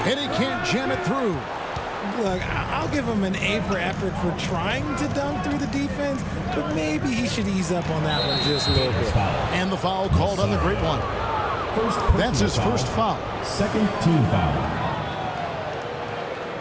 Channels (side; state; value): both; identical; correlation 1.00